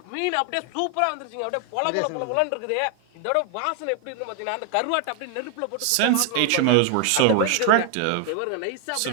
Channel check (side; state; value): both; different; correlation 0.00